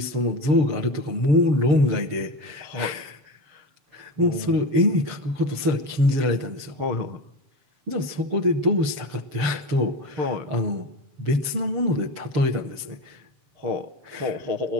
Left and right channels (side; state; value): left; late; 6.8 ms